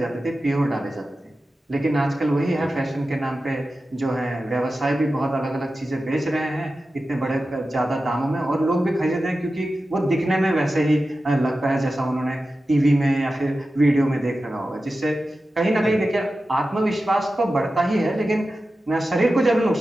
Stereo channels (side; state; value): both; normal; correlation 0.93